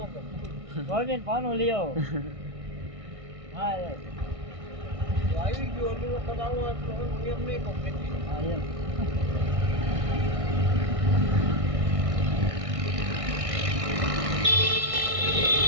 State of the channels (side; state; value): left; late; 1.6 ms